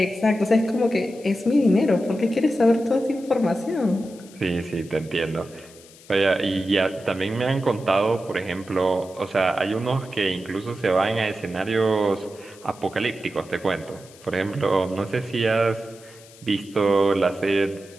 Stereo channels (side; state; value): left; noise; hiss, 23 dB below the sound